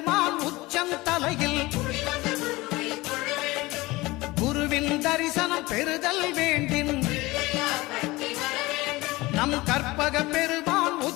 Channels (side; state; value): right; quieter; 20.9 dB